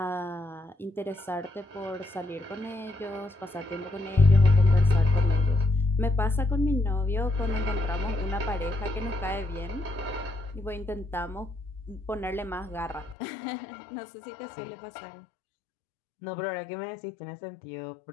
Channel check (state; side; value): drops out; right; at 13.2 s